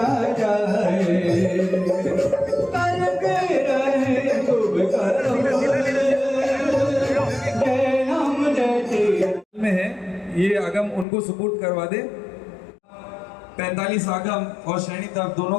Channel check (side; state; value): right; drops out; at 11.1 s